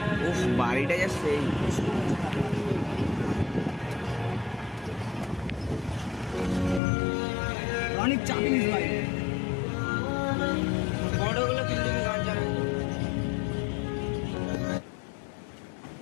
বাড়িটা যা সেই অনেক চাপিস ভাই। বড়গুলো কিন্তু গান চালায়।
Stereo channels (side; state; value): right; drops out; at 6.8 s